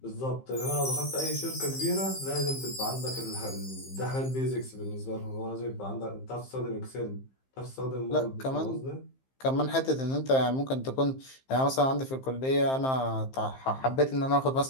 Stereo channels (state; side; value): late; right; 15 ms